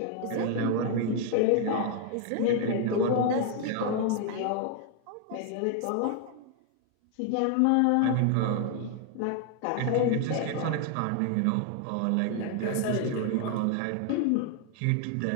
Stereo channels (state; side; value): different; both; correlation 0.00